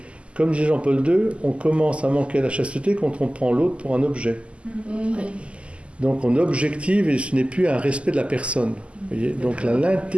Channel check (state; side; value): late; left; 0.056 ms